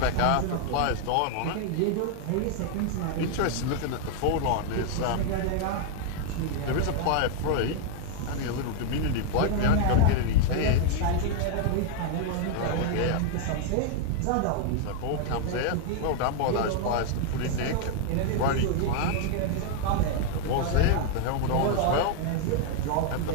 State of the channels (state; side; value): different; both; correlation 0.00